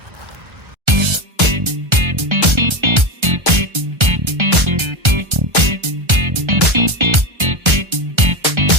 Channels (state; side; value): late; left; 1.3 ms